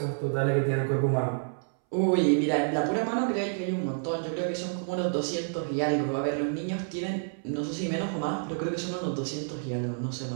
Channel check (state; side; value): silent; left; 59 dB below the other